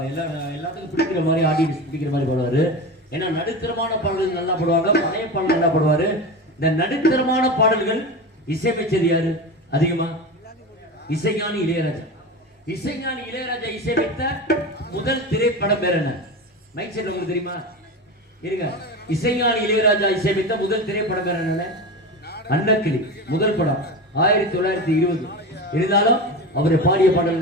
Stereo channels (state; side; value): normal; both; correlation 0.26